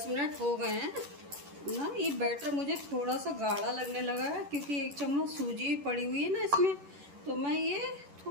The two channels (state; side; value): late; left; 11 ms